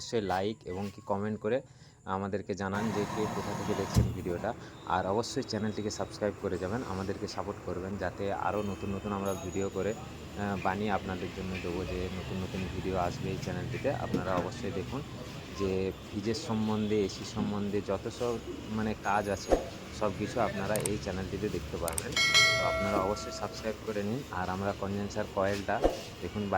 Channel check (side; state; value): both; identical; correlation 1.00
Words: লাইক এবং কি কমেন্ট করে আমাদেরকে জানান যে কে কোথা থেকে দেখছেন ভিডিওটা। আর অবশ্যই চ্যানেলটিকে সাবস্ক্রাইব করে যাবেন, আমাদেরকে সাপোর্ট করবেন যাতে আরও নতুন আমরা ভিডিও করে বানিয়ে আপনাদের জন্য দেবো। যে নতুন ভিডিও আসবে এই চ্যানেলটিতে, আপনারা অবশ্যই দেখুন। যে ফ্রিজের সম্বন্ধে, এসি সম্বন্ধে যত সব কাজ আছে সব কিছু আপনারা এই চ্যানেলটিতে দেখতে পারবেন। তো আপনারা অবশ্যই সাবস্ক্রাইব করে নিন। আর আমরা কনডেন্সার কয়েলটা দেখুন